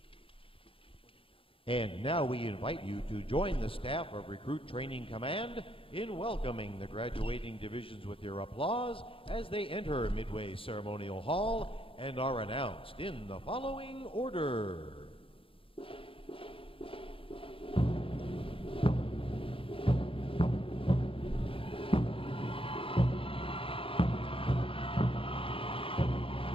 And now we invite you to join the staff of Recruit Training Command in welcoming the graduating divisions with your applause as they enter Midway Ceremonial Hall and are announced in the following order.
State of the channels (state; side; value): late; right; 0.26 ms